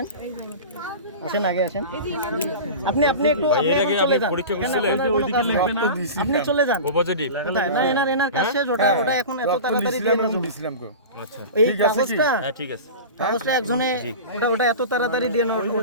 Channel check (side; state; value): both; inverted; correlation -0.31